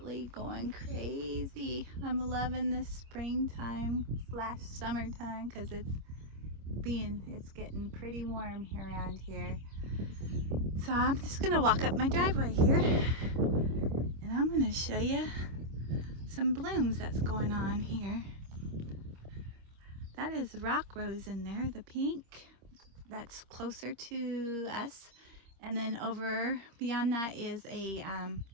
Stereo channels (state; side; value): late; left; 26 ms